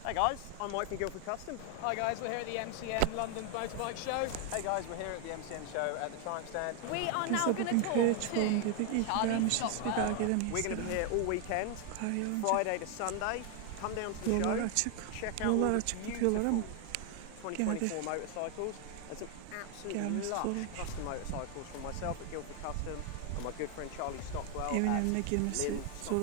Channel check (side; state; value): both; different; correlation 0.00